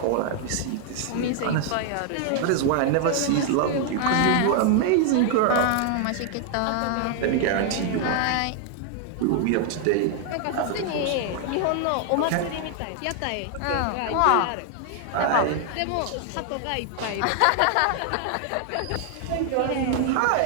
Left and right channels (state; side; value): different; both; correlation 0.00